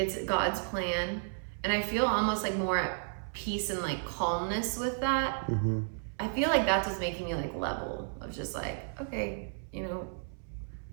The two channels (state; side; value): silent; left; 56 dB below the other